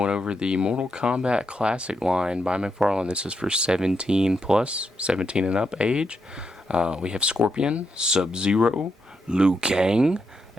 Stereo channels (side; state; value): both; normal; correlation 0.82